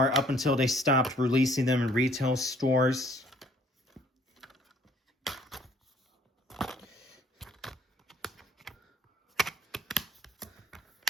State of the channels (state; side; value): normal; both; correlation 0.60